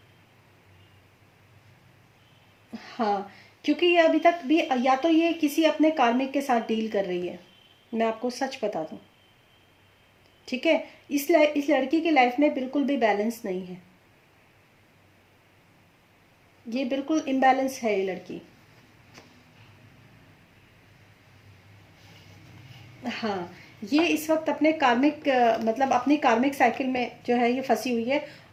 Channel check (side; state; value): both; identical; correlation 1.00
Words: हाँ, क्योंकि ये अभी तक भी, या तो ये किसी अपने कार्मिक के साथ डील कर रही है, मैं आपको सच बता दूं। ठीक है। इस लड़की की लाइफ में बिल्कुल भी बैलेंस नहीं है। ये बिल्कुल इम्बैलेंस है ये लड़की। हाँ, ये इस वक्त अपने कार्मिक मतलब अपनी कार्मिक साइकिल में जो है ये फंसी हुई है।